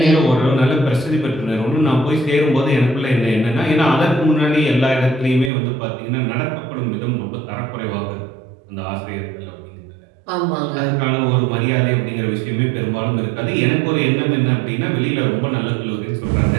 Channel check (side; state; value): left; drops out; at 5.5 s